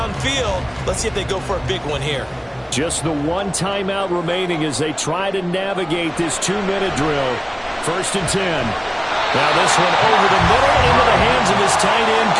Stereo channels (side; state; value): both; identical; correlation 1.00